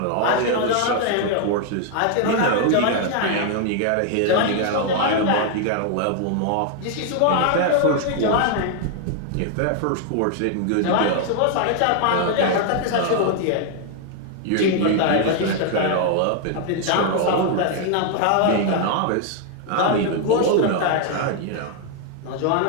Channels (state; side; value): different; both; correlation 0.00